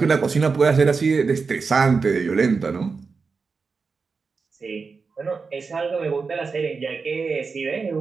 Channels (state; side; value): quieter; left; 4.8 dB